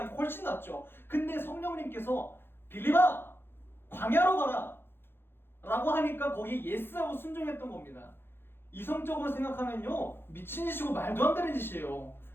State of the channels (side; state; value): right; late; 0.10 ms